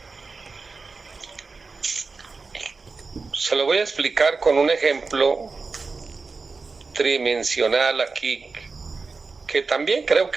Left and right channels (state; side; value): quieter; left; 4.3 dB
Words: Se lo voy a explicar con un ejemplo tridimensional aquí, que también creo